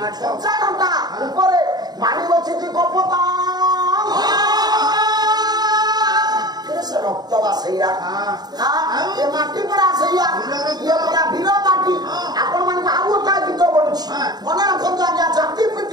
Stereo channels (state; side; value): late; left; 0.20 ms